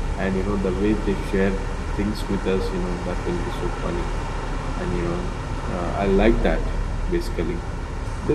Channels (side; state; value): both; identical; correlation 1.00